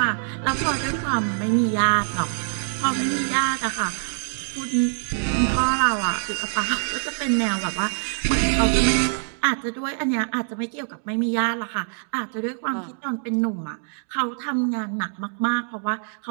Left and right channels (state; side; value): silent; left; digital silence